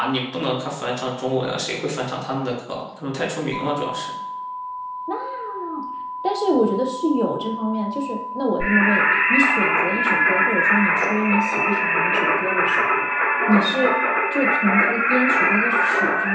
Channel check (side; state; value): both; identical; correlation 1.00